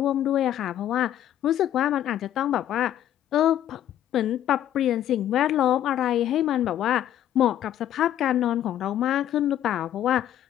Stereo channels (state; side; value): quieter; right; 11.5 dB